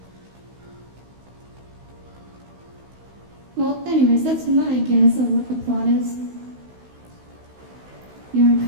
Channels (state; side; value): late; left; 16 ms